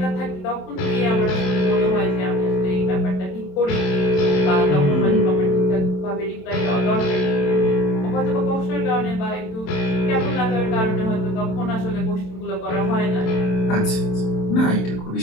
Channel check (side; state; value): right; late; 27 ms